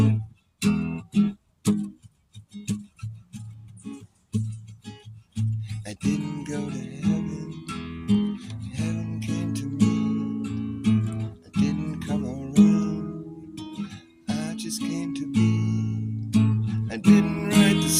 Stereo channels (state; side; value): identical; both; correlation 1.00